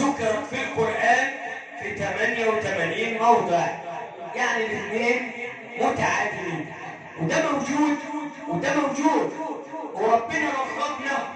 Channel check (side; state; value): both; identical; correlation 1.00